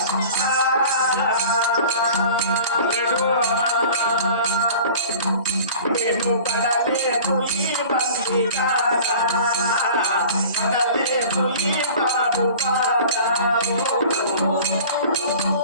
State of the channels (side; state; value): both; inverted; correlation -0.43